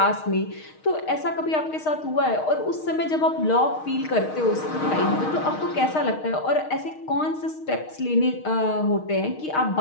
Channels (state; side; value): late; right; 6.4 ms